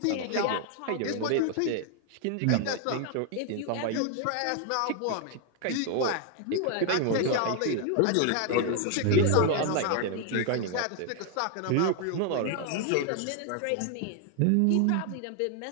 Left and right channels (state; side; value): different; both; correlation 0.00